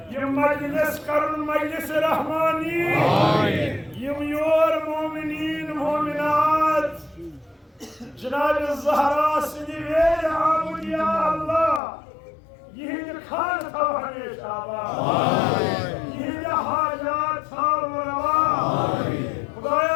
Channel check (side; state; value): right; drops out; at 11.8 s